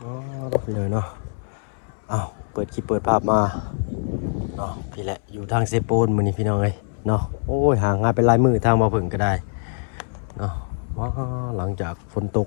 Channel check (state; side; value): silent; right; 63 dB below the other